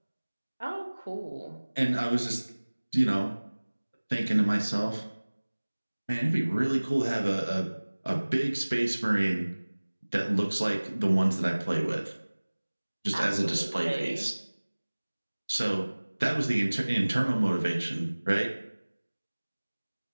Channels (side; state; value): both; inverted; correlation -1.00